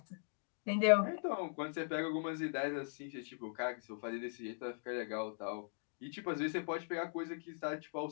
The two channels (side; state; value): right; silent; digital silence